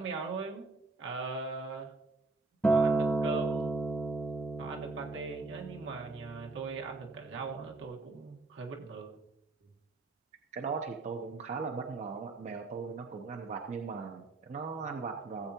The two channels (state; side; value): quieter; left; 3.4 dB